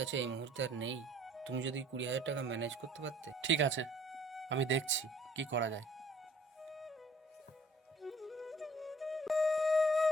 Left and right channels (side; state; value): both; normal; correlation 0.56